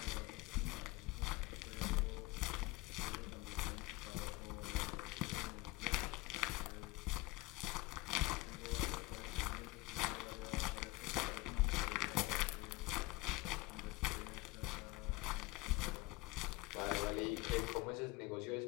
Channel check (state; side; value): quieter; right; 21.4 dB